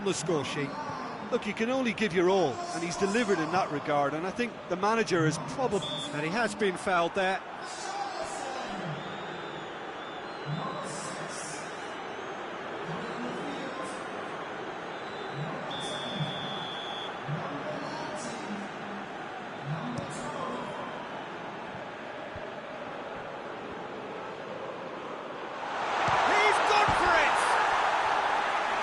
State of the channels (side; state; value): both; identical; correlation 1.00